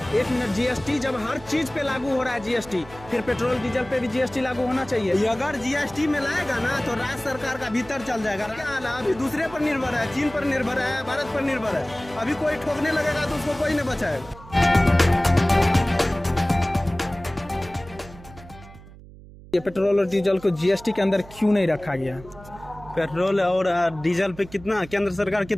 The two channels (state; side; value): noise; right; hum, 19 dB below the sound